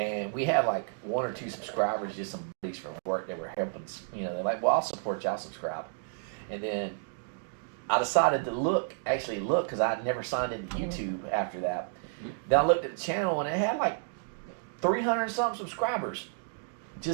we had like 1 or 2 subscribers, just some buddies from work that were helping. You know, they're like, "Well, I'll support y'all, subscribe." And then I decided to actually look, because I never signed into YouTube after that. Then I looked at the channel and it had like 300 something subscribers.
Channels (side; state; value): left; silent; digital silence